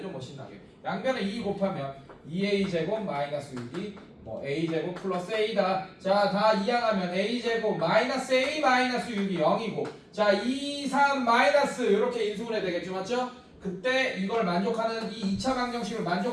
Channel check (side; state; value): both; identical; correlation 1.00